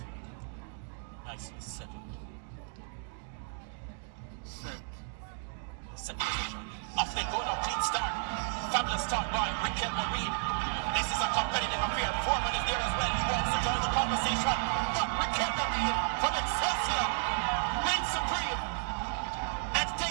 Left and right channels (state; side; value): silent; left; 56 dB below the other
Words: Nicely settled. Set. Set position. Off they go now, clean start. Fabulous start by Riquelme Reed. This is a competitive affair. Foreman is there as well. He wants to join the conversation. But Riquelme Reed from Excelsior reigns supreme and